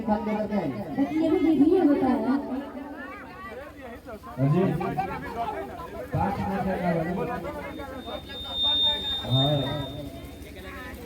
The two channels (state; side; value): identical; both; correlation 1.00